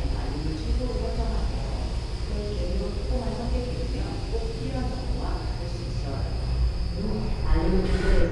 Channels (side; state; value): both; identical; correlation 1.00